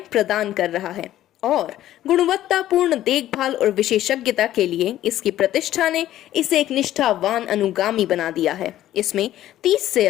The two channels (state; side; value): quieter; right; 13.2 dB